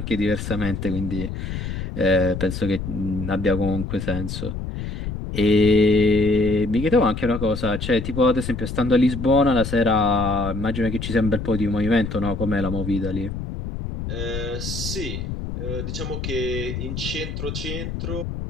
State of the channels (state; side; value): noise; left; rumble, 5 dB below the sound